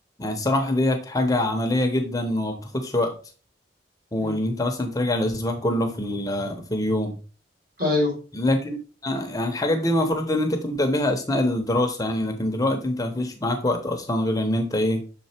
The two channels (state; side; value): normal; both; correlation 0.65